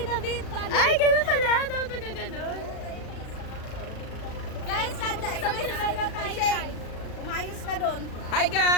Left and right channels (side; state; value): right; late; 36 ms